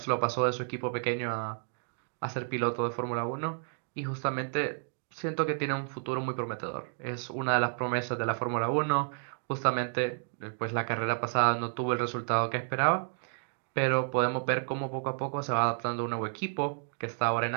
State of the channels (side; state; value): left; silent; 57 dB below the other